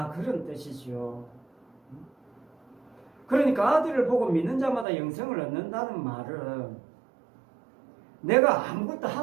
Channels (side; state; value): left; drops out; at 4.9 s